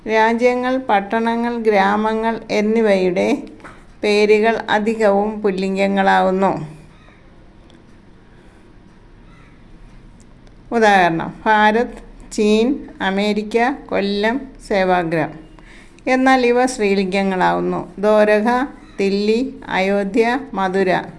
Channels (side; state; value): both; identical; correlation 1.00